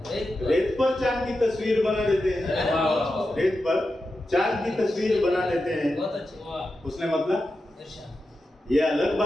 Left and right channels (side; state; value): both; normal; correlation 0.90